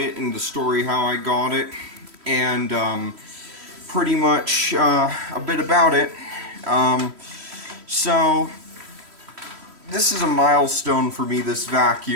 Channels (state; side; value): late; left; 3.1 ms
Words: and the story how I got it, and pretty much a bit about it. Um, so this is a milestone for me, this